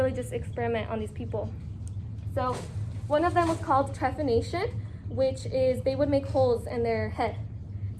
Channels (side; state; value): both; identical; correlation 1.00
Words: just experiment on these people. So one of them was called trephination, which is they would make holes in their head.